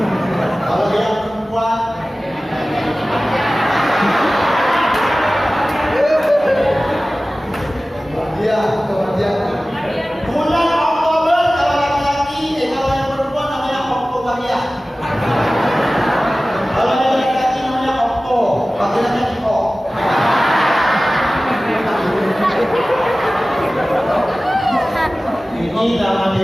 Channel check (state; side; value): normal; both; correlation 0.97